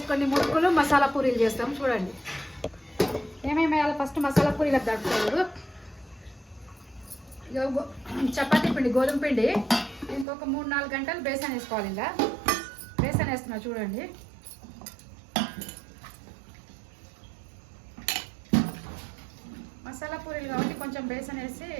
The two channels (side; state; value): left; drops out; at 10.2 s